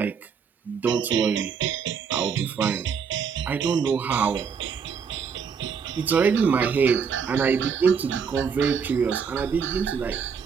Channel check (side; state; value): left; quieter; 6.3 dB